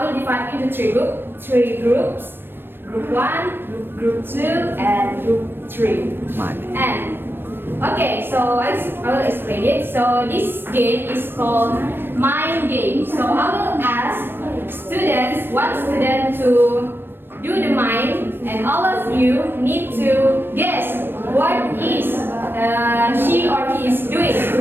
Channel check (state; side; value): late; left; 0.099 ms